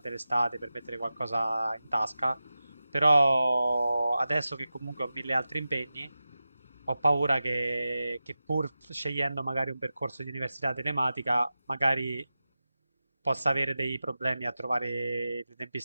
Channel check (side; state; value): both; inverted; correlation -0.94